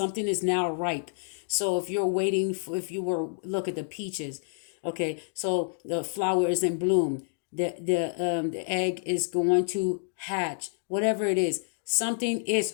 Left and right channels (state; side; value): silent; right; digital silence